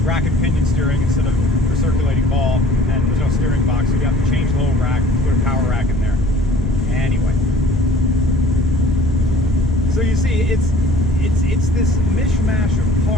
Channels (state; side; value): normal; both; correlation 0.51